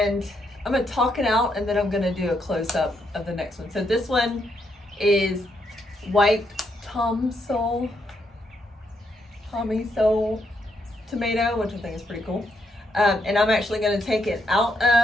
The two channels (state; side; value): normal; both; correlation 0.77